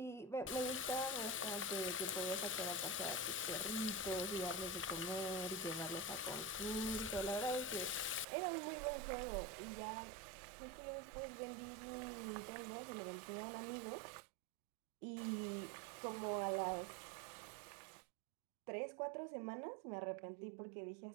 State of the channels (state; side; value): drops out; left; at 8.2 s